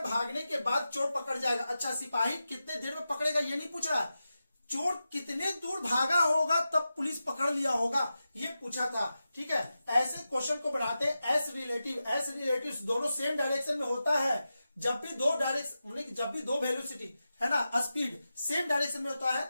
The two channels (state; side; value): inverted; both; correlation -0.91